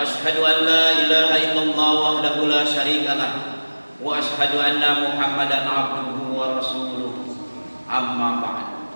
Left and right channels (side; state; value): both; inverted; correlation -1.00